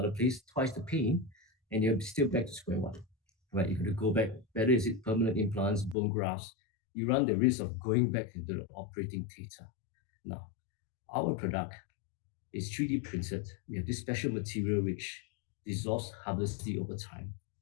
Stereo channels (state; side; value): drops out; right; at 6.0 s